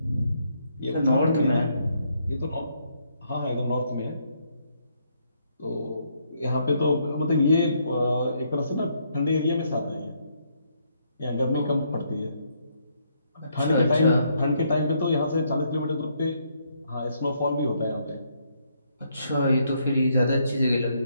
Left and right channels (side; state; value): both; inverted; correlation -0.73